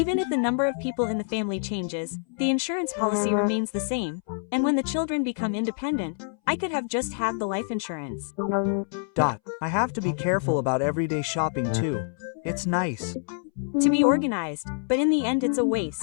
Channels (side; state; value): right; silent; 61 dB below the other